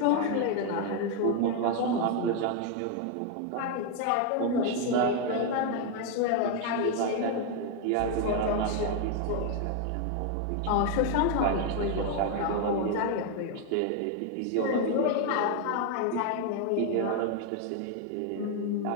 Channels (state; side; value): different; both; correlation 0.01